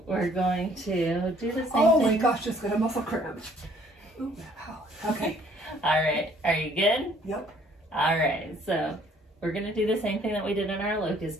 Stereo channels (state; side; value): normal; both; correlation 0.60